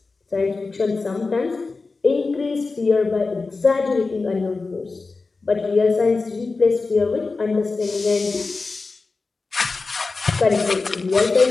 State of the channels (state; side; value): quieter; right; 3.9 dB